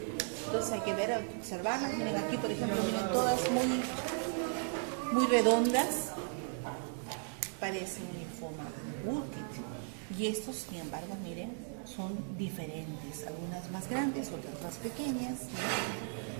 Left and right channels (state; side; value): silent; left; 54 dB below the other